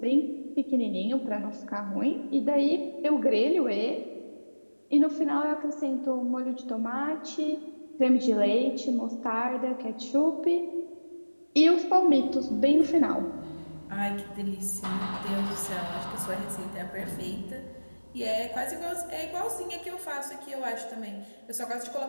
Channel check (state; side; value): inverted; both; correlation -1.00